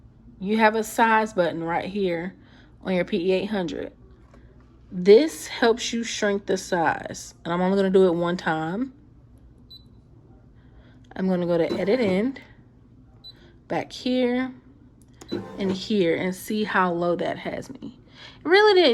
You have a size button right here on your PE800. This helps you shrink the size. And I'm only going to do it 1 time. I'm going to go to Edit End, back here, and here, and see how low that has me. It really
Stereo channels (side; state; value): both; identical; correlation 1.00